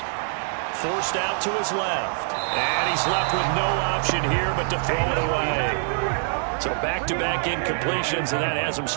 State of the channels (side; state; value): left; silent; digital silence